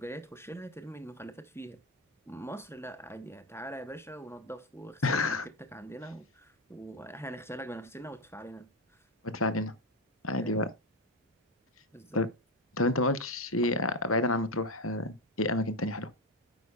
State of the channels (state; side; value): normal; both; correlation 0.10